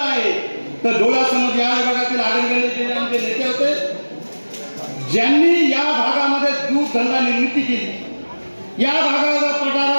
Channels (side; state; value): both; inverted; correlation -1.00